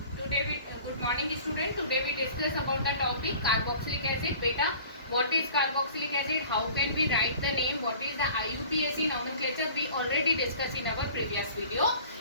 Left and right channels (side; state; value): both; inverted; correlation -0.46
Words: Good morning student. Today we discuss about the topic carboxylic acid. Beta, what is carboxylic acid? How can we write the name? What is the IUPAC nomenclature? We already discussed in our previous video.